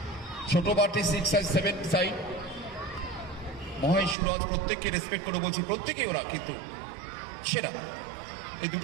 ছোট পার্টি 6 আর 7 সাইড। মহেশ সুরজ প্রত্যেককে রেসপেক্ট করে বলছি, প্রত্যেকেই ওরা কিন্তু সেরা এই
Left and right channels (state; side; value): drops out; left; at 4.2 s